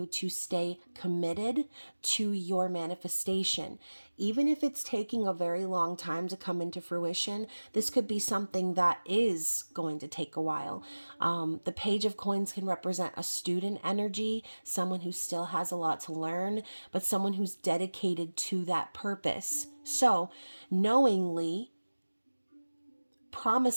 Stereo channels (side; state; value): both; inverted; correlation -1.00